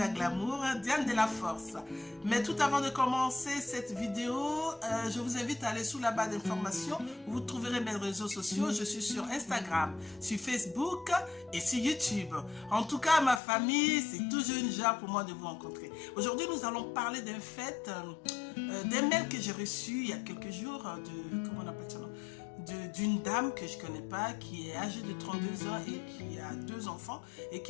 glamour, Diane de la force. Mais tout avant de commencer cette vidéo, je vous invite à aller sous la barre d'informations. Vous trouverez mes réseaux sociaux. Je suis sur Instagram, sur Facebook et sur YouTube. En tout cas, ma famille, c'est toujours une joie pour moi de vous rencontrer. Aujourd'hui, nous allons parler d'un fait, d'un mail que j'ai reçu il y a quelques jours de, comment on appelle ça, d'une dame que je ne connais pas, qui est âgée de 32 ans et qui a 2 enfants et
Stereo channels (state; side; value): drops out; right; at 13.4 s